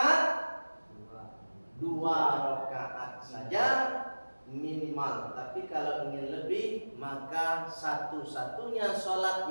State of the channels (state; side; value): inverted; both; correlation -1.00